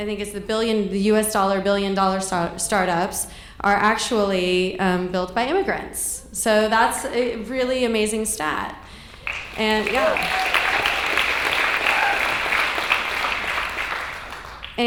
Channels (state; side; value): identical; both; correlation 1.00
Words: think it's the US dollar billion dollar startups are actually built by immigrants. So that's a really amazing stat. And yeah.